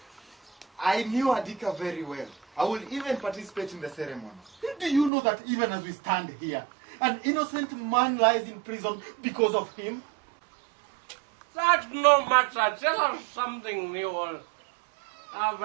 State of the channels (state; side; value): drops out; left; at 5.1 s